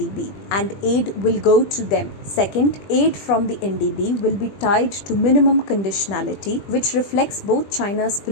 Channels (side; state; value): right; late; 20 ms